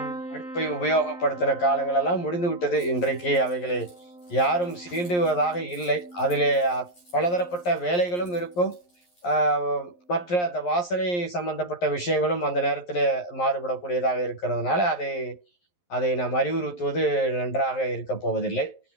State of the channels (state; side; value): late; right; 11 ms